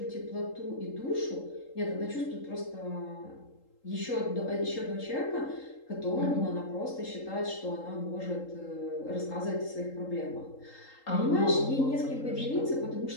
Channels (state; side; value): late; right; 3.8 ms